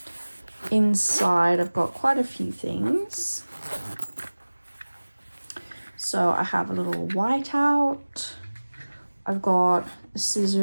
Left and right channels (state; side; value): inverted; both; correlation -1.00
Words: Inside I've got quite a few things. So I have a little whiteout. I've got a